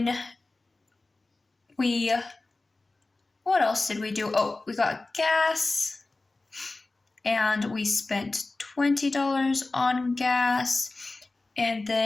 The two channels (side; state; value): right; quieter; 3.2 dB